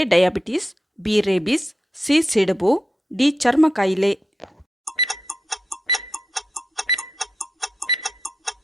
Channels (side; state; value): both; normal; correlation 0.87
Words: diabetes, B rabies, C ಸಿಡುಬು, ಡಿ ಚರ್ಮ ಕಾಯಿಲೆ.